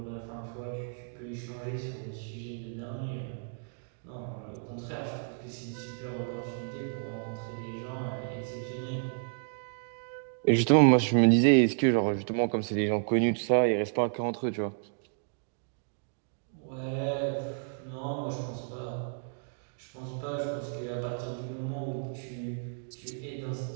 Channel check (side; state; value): left; silent; digital silence